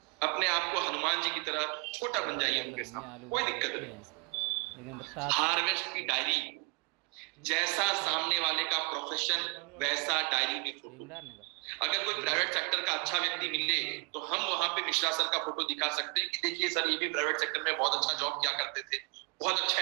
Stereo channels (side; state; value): left; quieter; 33.9 dB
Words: अपने आप को हनुमान जी की तरह छोटा बन जाइए उनके सामने, कोई दिक्कत नहीं। हार्वेस्ट की डायरी, जैसा सामने वाले का प्रोफेशन वैसा डायरी में फोटो। अगर कोई प्राइवेट सेक्टर का अच्छा व्यक्ति मिले तो हम वहां पे मिश्रा सर का फोटो दिखा सकते हैं कि देखिए सर ये भी प्राइवेट सेक्टर में बहुत अच्छा जॉब किया करते थे, बहुत अच्छा